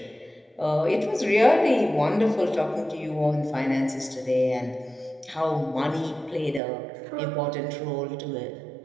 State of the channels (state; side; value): drops out; left; at 6.6 s